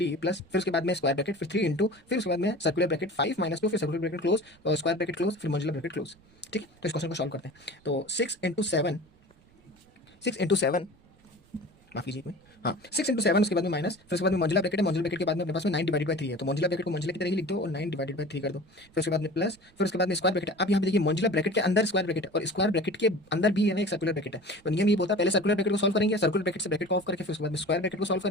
प्लस फिर उसके बाद में स्क्वायर ब्रैकेट फिर 3 इंटू फिर उसके बाद में सर्कुलर ब्रैकेट 5 माइनस 2 फिर सर्कुलर ब्रैकेट क्लोज और स्क्वायर ब्रैकेट क्लोज फिर मॉड्यूलर ब्रैकेट क्लोज। ठीक है, तो इस क्वेश्चन को सॉल्व करते हैं। तो 6 × 7 माफ कीजिए एक मिनट, हाँ 6 × 7 उसके बाद में माइनस फिर उसके बाद में मॉड्यूलर ब्रैकेट है, मॉड्यूलर ब्रैकेट के बाद में अपने पास में 9 डिवाइडेड बाय 3 है, तो मॉड्यूलर ब्रैकेट को मॉड्यूलर की तरह ही लिख दो और 9 डिवाइडेड बाय 3 कर दो। फिर उसके बाद में प्लस फिर उसके बाद में स्क्वायर ब्रैकेट है। अब यहाँ पे देखिए मॉड्यूलर ब्रैकेट के अंदर स्क्वायर ब्रैकेट है और स्क्वायर ब्रैकेट के अंदर भी है ना एक सर्कुलर ब्रैकेट है। तो नियम ये बोलता है पहले सर्कुलर ब्रैकेट को सॉल्व करेंगे, सर्कुलर ब्रैकेट से ब्रैकेट को ऑफ करके फिर उसके बाद में स्क्वायर ब्रैकेट को सॉल्व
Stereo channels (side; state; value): right; noise; rumble, 30 dB below the sound